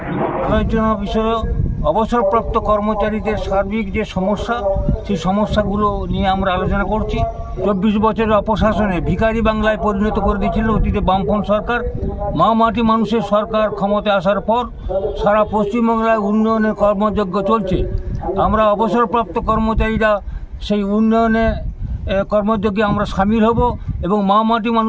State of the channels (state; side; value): identical; both; correlation 1.00